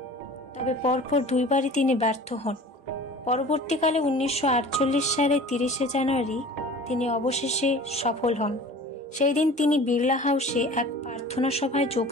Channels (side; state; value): both; normal; correlation 0.42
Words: তবে পরপর দুইবারই তিনি ব্যর্থ হন। পরবর্তীকালে 1948 সালে 30 জানুয়ারি তিনি অবশেষে সফল হন। সেই দিন তিনি বিড়লা হাউসে এক প্রার্থনা সভায়